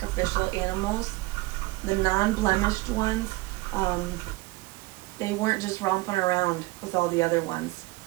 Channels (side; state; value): left; quieter; 21.4 dB